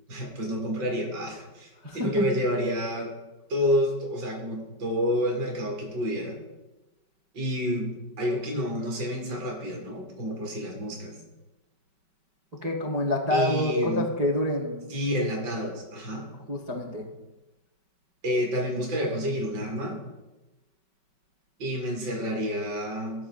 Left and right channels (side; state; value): left; late; 5.2 ms